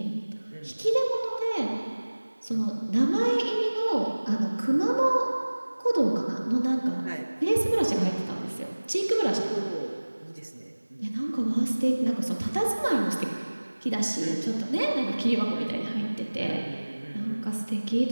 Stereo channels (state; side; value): inverted; both; correlation -1.00